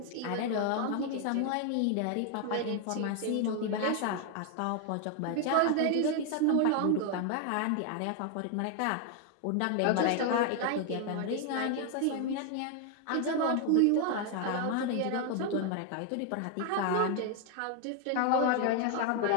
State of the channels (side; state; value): both; different; correlation 0.01